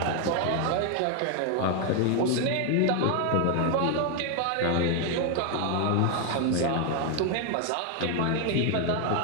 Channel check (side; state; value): both; different; correlation 0.01